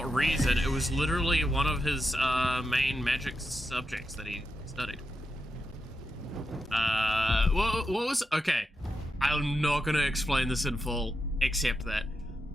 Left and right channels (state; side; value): normal; both; correlation 0.87